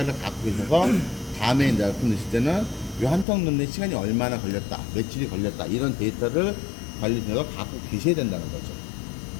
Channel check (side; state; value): right; drops out; at 3.2 s